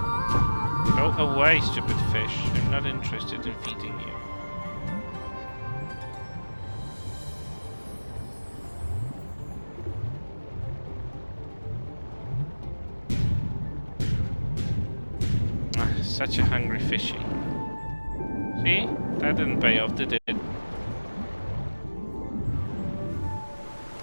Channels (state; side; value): inverted; both; correlation -1.00